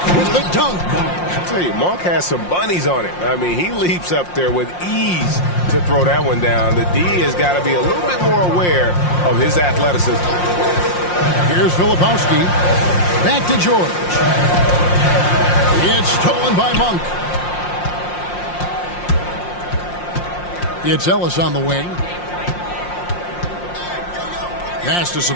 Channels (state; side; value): late; right; 5.6 ms